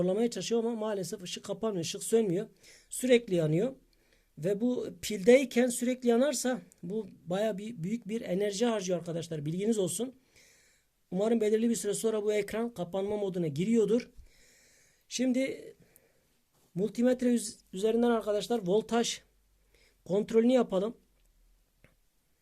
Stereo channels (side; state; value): both; identical; correlation 1.00